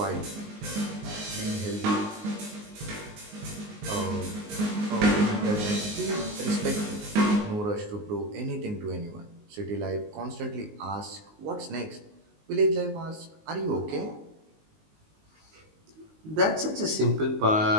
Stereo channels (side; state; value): left; late; 19 ms